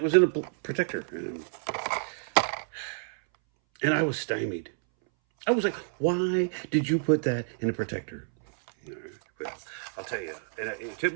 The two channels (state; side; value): silent; left; 59 dB below the other